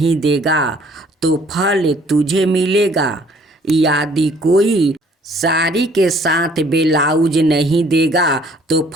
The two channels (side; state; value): both; normal; correlation 0.59